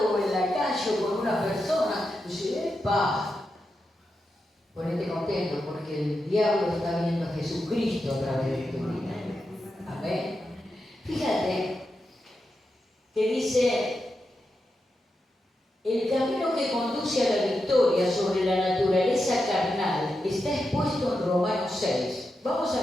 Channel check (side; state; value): both; normal; correlation 0.88